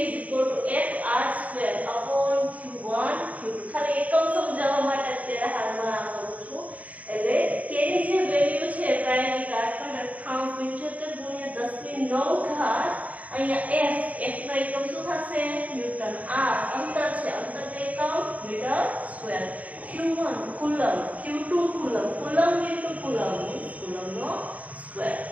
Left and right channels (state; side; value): late; left; 0.070 ms